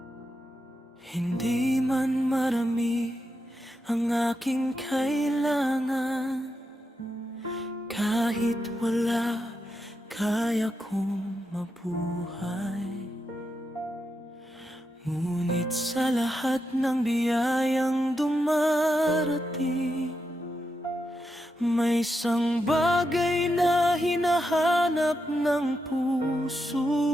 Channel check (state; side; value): normal; both; correlation 0.85